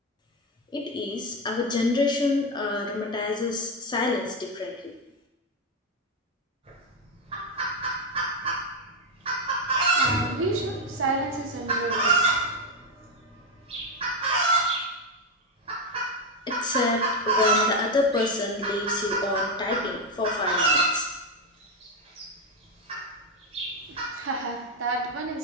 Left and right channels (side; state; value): both; normal; correlation 0.07